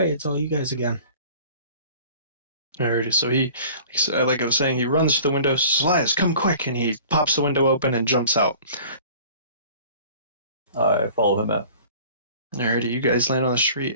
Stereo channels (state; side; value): inverted; both; correlation -0.46